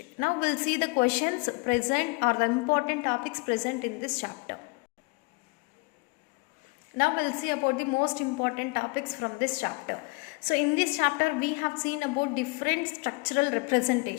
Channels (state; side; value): quieter; right; 28.5 dB